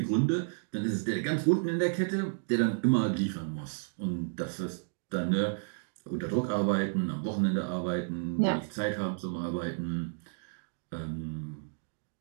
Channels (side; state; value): left; silent; digital silence